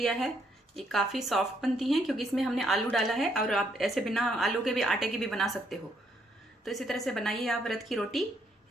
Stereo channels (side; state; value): both; normal; correlation 0.72